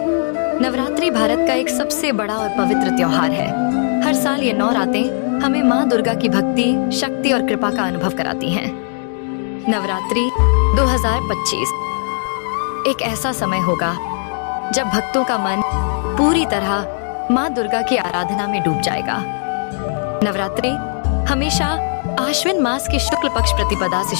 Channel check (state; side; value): silent; right; digital silence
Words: नवरात्रि भारत का एक सबसे बड़ा और पवित्र त्योहार है। हर साल ये 9 रातें हमें माँ दुर्गा की भक्ति, शक्ति और कृपा का अनुभव कराती हैं। नवरात्रि 2025 एक ऐसा समय होगा जब भक्तों का मन पूरी तरह माँ दुर्गा की आराधना में डूब जाएगा। नवरात्रि हमेशा आश्विन मास की शुक्ल पक्ष प्रतिपदा से